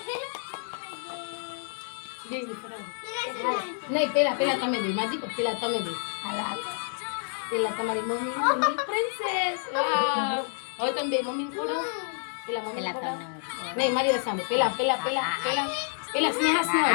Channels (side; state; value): right; silent; 59 dB below the other